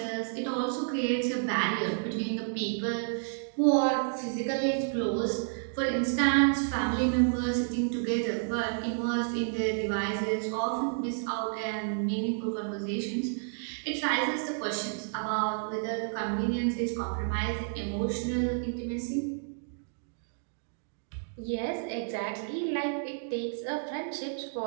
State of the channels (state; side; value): silent; left; digital silence